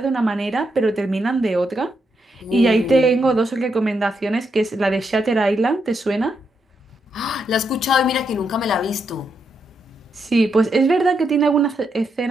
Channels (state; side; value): normal; both; correlation 0.81